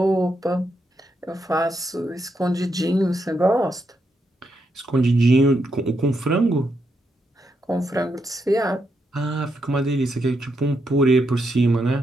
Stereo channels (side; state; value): both; normal; correlation 0.81